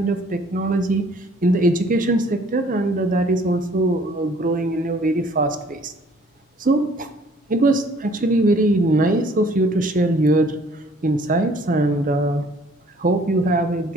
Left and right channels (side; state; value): both; normal; correlation 0.57